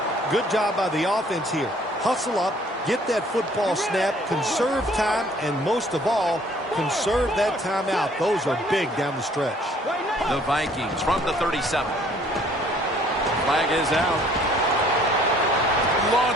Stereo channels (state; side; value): normal; both; correlation 0.58